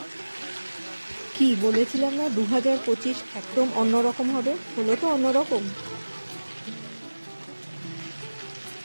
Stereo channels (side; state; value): both; inverted; correlation -1.00